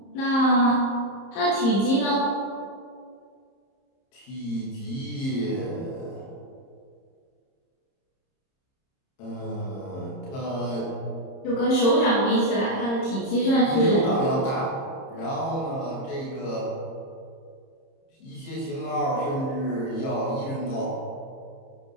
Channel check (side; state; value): right; late; 30 ms